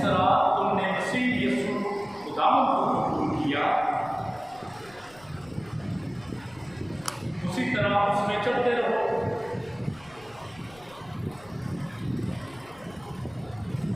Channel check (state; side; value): noise; left; rumble, 25 dB below the sound